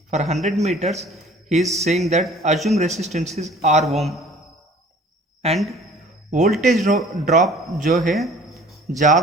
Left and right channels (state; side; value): normal; both; correlation 0.50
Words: for 100 metres ही is saying that assume resistance is R ohm and voltage drop जो है,